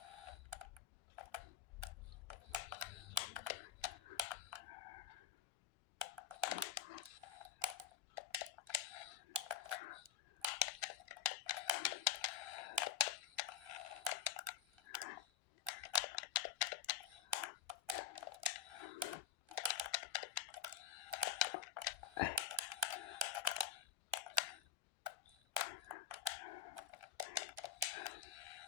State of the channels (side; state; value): right; quieter; 9.2 dB